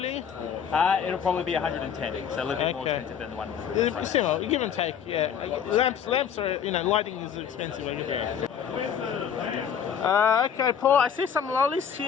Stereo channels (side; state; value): right; quieter; 7.9 dB